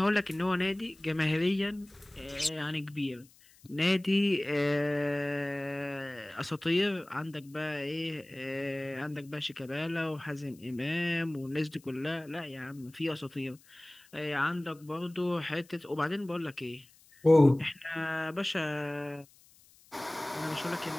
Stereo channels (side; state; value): left; noise; hiss, 27 dB below the sound